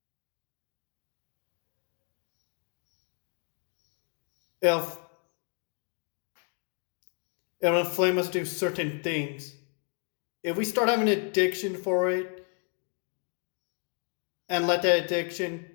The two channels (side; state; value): right; quieter; 39.1 dB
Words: If it'll inflame us to do certain things. If we start having an addiction for it and let that